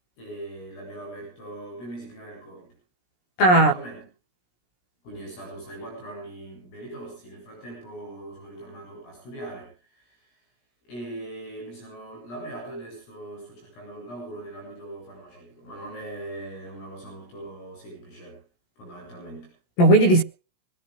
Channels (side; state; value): right; late; 17 ms